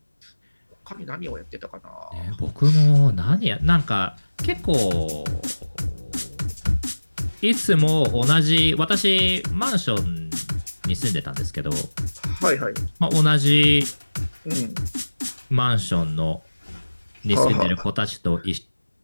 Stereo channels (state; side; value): inverted; both; correlation -1.00